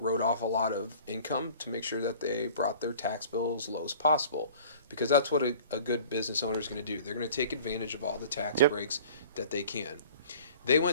off a lot of income to make sure that they brought their tax bill as low as possible, because that's what a good business owner is going to do. They're going to take advantage of all the tax Yep. breaks that they can. They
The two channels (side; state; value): both; inverted; correlation -0.47